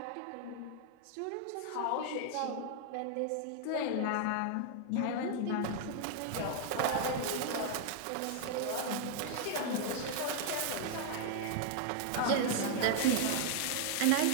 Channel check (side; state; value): both; different; correlation 0.00